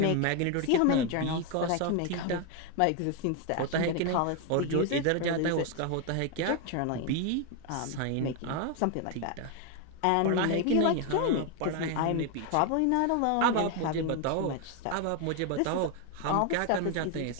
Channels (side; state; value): both; different; correlation 0.01